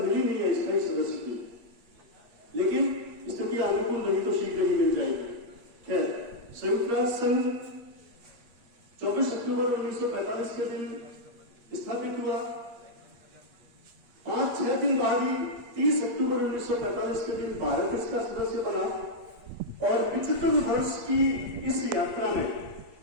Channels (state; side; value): late; left; 8.4 ms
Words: नहीं है स्थायी सदस्य की, लेकिन स्थिति अनुकूल नहीं तो शीघ्र ही मिल जाएगी। खैर, संयुक्त राष्ट्र संघ 24 अक्टूबर 1945 के दिन स्थापित हुआ। 5-6 दिन बाद ही 30 अक्टूबर 1945 के दिन भारत इसका सदस्य बना और 75 वर्ष की इस यात्रा में